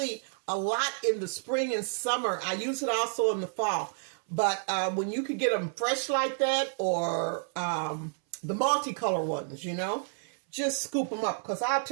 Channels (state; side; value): silent; left; 58 dB below the other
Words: a lot in the spring and summer. I use it also in the fall. But when you can get them fresh like that, or the multicolor ones, you know, just scoop them up. Because I'll